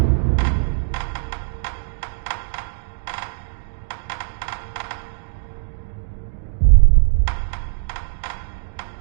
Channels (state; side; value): silent; left; digital silence